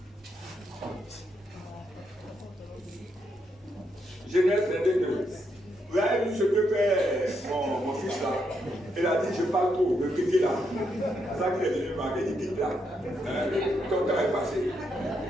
Genèse 22:2. Vous avez vu ce que fait mon fils là. Il a dit, je parle trop, le petit là. C'est ça qu'il est venu marquer, il dit, quitte là. Ton temps est passé.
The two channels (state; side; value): normal; both; correlation 0.79